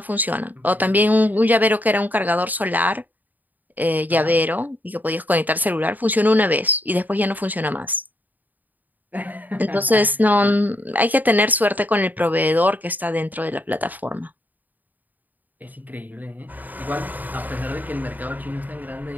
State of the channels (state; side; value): late; left; 0.084 ms